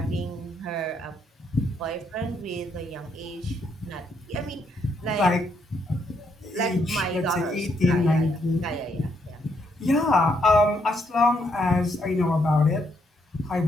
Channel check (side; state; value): both; normal; correlation 0.74